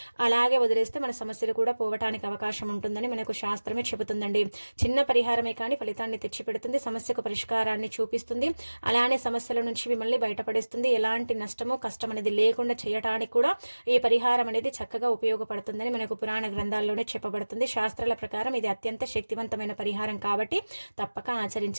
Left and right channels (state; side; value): inverted; both; correlation -1.00